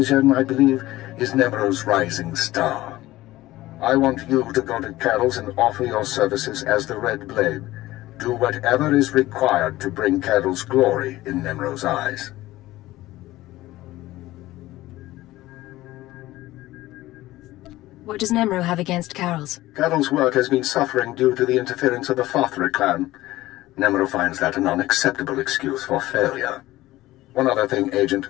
I believe, is Nemro's rising star. I want you to go to Carols and offer your services as the Red Blade. Do whatever is required to bring Carols glory in Nemro's eyes. What does Nemro have against Carols? Carols' work has been suffering due to the interference of the Fathra clan. Nemro finds that an unacceptable excuse for failure. One other thing,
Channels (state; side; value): quieter; right; 16.9 dB